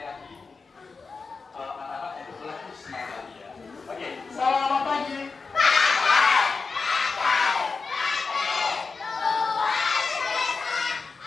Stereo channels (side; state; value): right; quieter; 4.5 dB